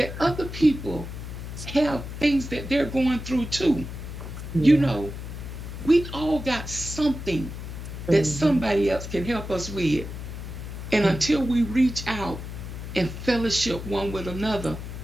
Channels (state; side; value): noise; left; hum, 9 dB below the sound